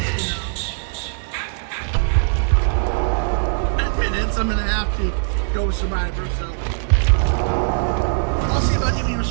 10 minutes, I'm gonna have to go with Survivor, so I'll see about giving you a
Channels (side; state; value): left; silent; digital silence